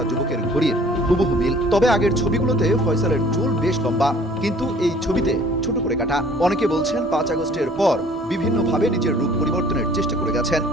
যুবকের ঘড়ির হুবহু মিল। তবে আগের ছবিগুলোতে ফয়সালের চুল বেশ লম্বা, কিন্তু এই ছবিতে ছোট করে কাটা। অনেকে বলছেন 5 আগস্টের পর বিভিন্নভাবে নিজের রূপ পরিবর্তনের চেষ্টা করে গেছেন।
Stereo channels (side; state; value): both; normal; correlation 0.53